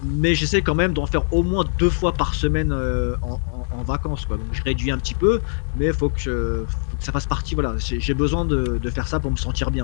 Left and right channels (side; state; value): right; silent; 56 dB below the other